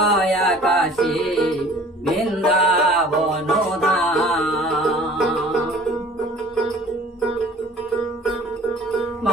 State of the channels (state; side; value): normal; both; correlation 0.49